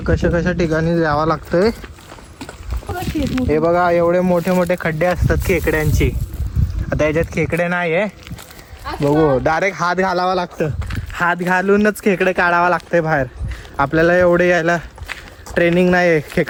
कशा कशा ठिकाणी जावं लागतंय. हे बघा एवढे मोठे मोठे खड्डे असतात खेकड्यांची. आता याच्यात खेकडे नाही आहे. बघू डायरेक्ट हात घालावा लागतं. हात घालूनच खेकडे काढावा लागतंय बाहेर. आपल्याला एवढे यायला ट्रेनिंग नाही आहे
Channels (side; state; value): both; identical; correlation 1.00